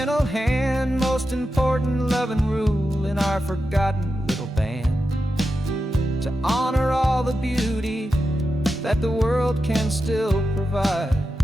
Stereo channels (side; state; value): both; normal; correlation 0.90